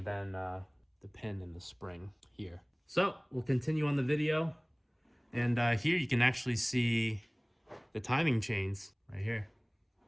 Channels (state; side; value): identical; both; correlation 1.00